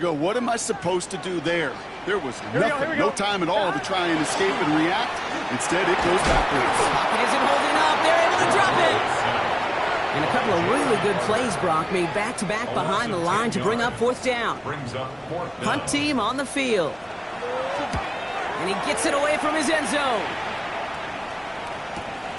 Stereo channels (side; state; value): both; identical; correlation 1.00